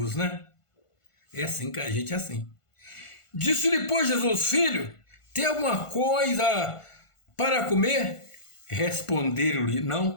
né? É assim que a gente é assim. Disse-lhe, pois, Jesus: filho, tem alguma coisa para comer? Responderam-lhe:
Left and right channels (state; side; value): late; right; 1.5 ms